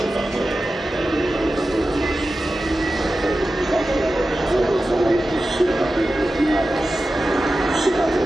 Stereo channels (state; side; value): normal; both; correlation 0.93